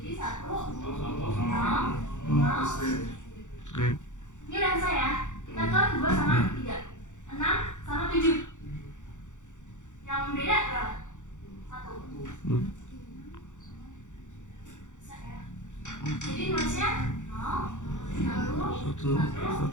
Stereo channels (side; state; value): right; late; 0.85 ms